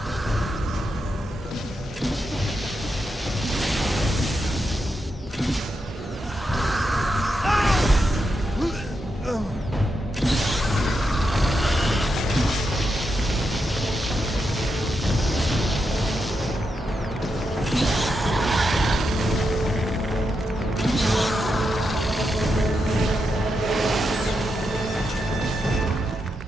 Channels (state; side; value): normal; both; correlation 0.85